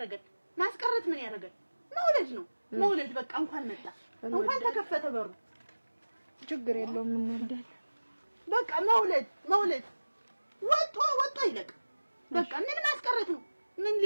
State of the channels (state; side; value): inverted; both; correlation -1.00